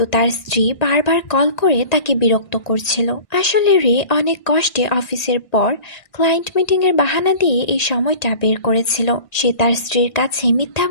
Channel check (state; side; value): late; right; 1.6 ms